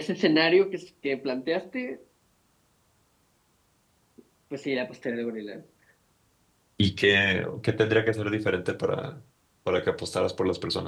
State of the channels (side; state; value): both; identical; correlation 1.00